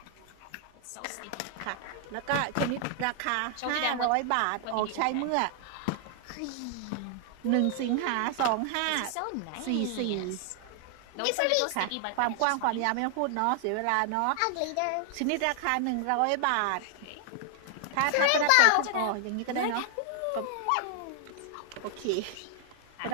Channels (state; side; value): different; both; correlation 0.00